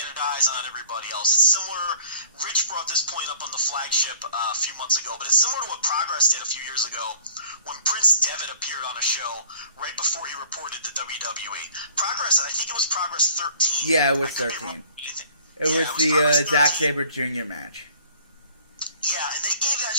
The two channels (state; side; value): inverted; both; correlation -0.52